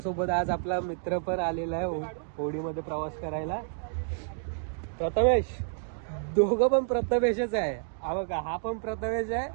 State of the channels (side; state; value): left; silent; digital silence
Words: आज आपला मित्र पण आलेला आहे होडीमध्ये प्रवास करायला. प्रथमेश, दोघं पण प्रथमेशच आहे. हा बघा, हा पण प्रथमेश आहे